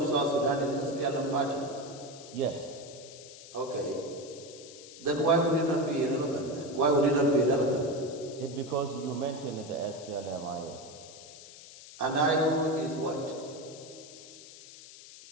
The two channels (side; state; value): left; noise; hiss, 17 dB below the sound